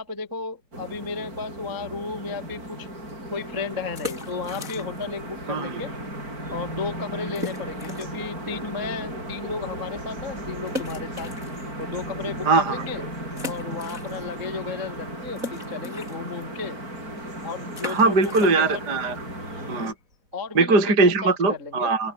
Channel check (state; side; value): late; left; 4.1 ms